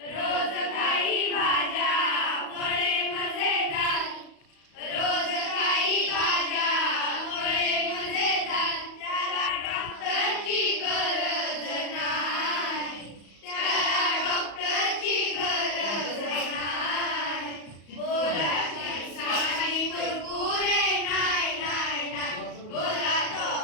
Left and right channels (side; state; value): right; late; 34 ms